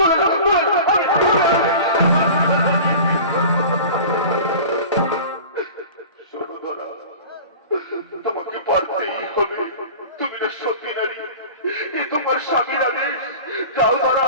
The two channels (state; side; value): inverted; both; correlation -0.38